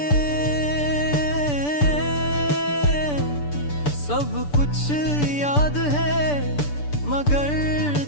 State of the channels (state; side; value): late; right; 6.9 ms